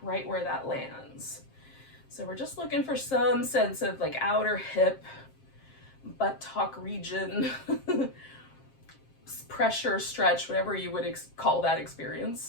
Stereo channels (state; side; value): late; right; 7.5 ms